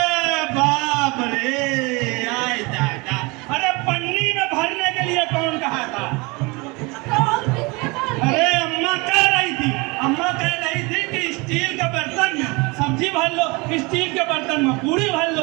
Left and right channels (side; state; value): left; quieter; 26.6 dB